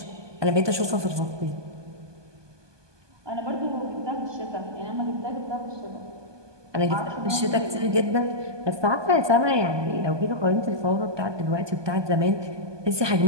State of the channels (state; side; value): late; left; 1.2 ms